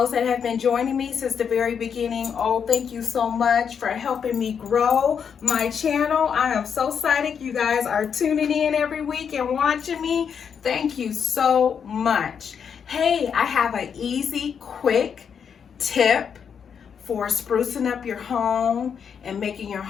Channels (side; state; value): right; quieter; 7.1 dB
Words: that have been joining me since the very beginning, oh, thank you so much for helping me grow my channel. I am so excited you guys are tuning in every week and watching me. Thank you so much. Hey, I have an easy, quick tip for sprucing up your home and making your